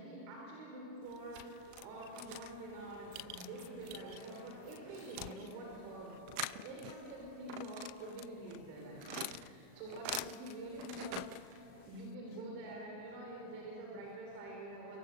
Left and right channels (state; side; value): late; left; 38 ms